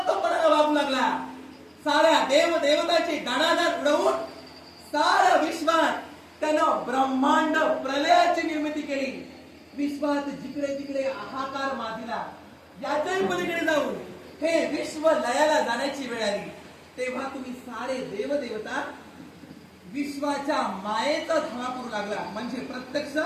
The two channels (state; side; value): identical; both; correlation 1.00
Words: वागू लागला. साऱ्या देव देवताची दाणादाण उडवून साऱ्या विश्वात त्यानं ब्रह्मांड प्रलयाची निर्मिती केली. विश्वात जिकडे तिकडे हाहाकार माजला. याच्याही पलीकडे जाऊन हे विश्व लयाला जाण्याची वेळ आली. तेव्हा तुम्ही सारे देव देवता विश्वाच्या मायेचा धावा करू लागला, म्हणजे प्रत्यक्ष